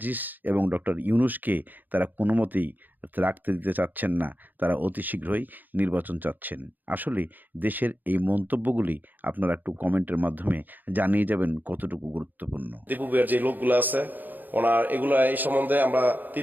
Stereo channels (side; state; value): left; late; 0.086 ms